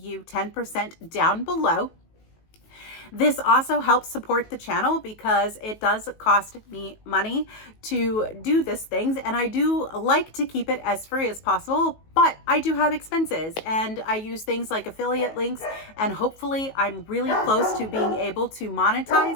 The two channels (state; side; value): late; right; 19 ms